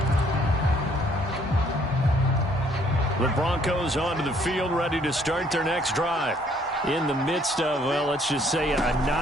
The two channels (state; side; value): normal; both; correlation 0.64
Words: The Broncos onto the field, ready to start their next drive. in the midst of, well, let's just say a